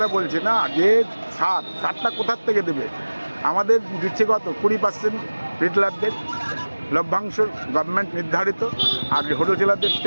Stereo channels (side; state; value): both; inverted; correlation -1.00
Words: বলছি না, যে সারটা কোথার থেকে দেবে? আমাদের দিচ্ছে কত 20% রিটেলারদের লভ্যাংশ গভর্নমেন্ট নির্ধারিত, আর হোলসেলারদের